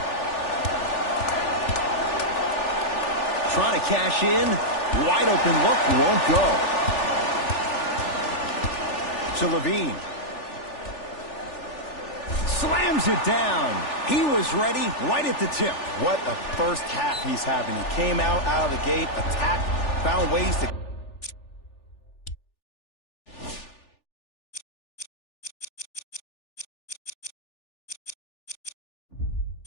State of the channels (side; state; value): right; late; 3.4 ms